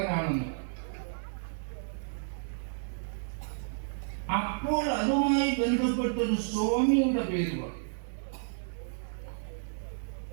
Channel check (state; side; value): silent; left; digital silence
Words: അപ്പോൾ അതുമായി ബന്ധപ്പെട്ടൊരു സ്വാമിയുടെ പേര് പറഞ്ഞു.